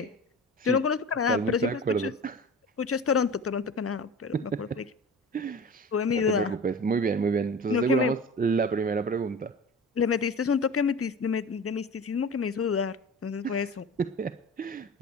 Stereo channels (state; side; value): normal; both; correlation 0.35